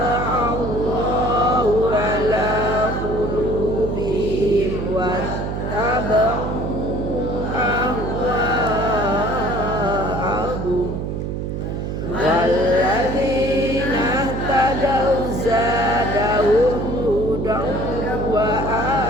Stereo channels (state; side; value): noise; right; hum, 4 dB below the sound